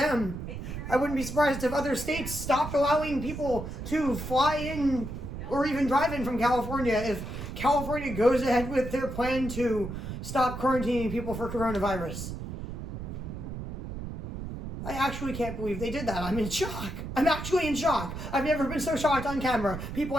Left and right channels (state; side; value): noise; right; rumble, 7 dB below the sound